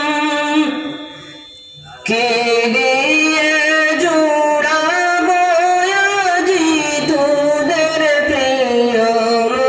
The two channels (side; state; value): both; identical; correlation 1.00